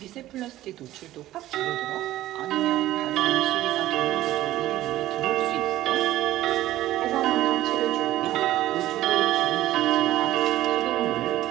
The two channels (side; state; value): left; quieter; 14.8 dB